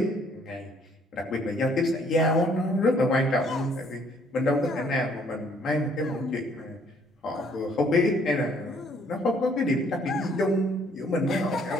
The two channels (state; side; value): normal; both; correlation 0.63